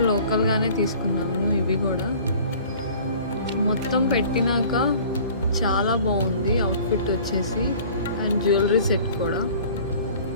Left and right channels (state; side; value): inverted; both; correlation -0.47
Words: లోకల్గానే తీసుకున్నాను. ఇవి కూడా మొత్తం పెట్టినాక చాలా బాగుంది అవుట్ఫిట్ వచ్చేసి. అండ్ జ్యువెలరీ సెట్ కూడా.